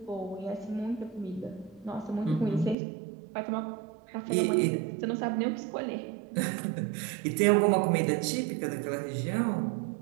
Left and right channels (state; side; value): drops out; left; at 2.8 s